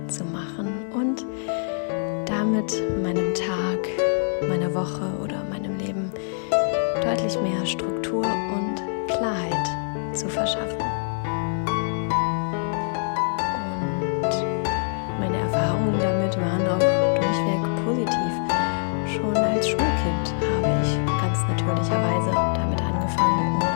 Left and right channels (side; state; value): right; silent; digital silence